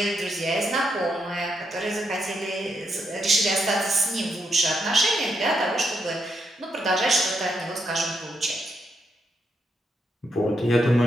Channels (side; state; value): both; normal; correlation 0.80